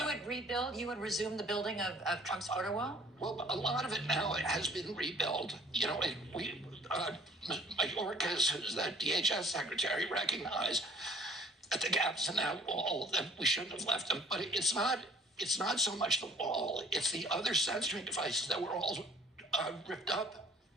you would resume the building of Trump's border wall? Well, a lot of it now has been rebuilt. You know, Mayorkas, who's the DHS secretary, recognized that the gaps in that wall, that we shouldn't have left them. But it's not so much the wall, it's the other sensoring devices that were all ripped up.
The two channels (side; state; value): both; normal; correlation 0.53